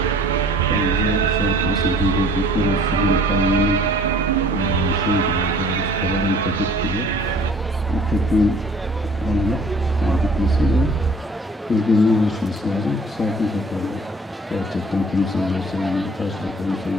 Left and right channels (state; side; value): normal; both; correlation 0.53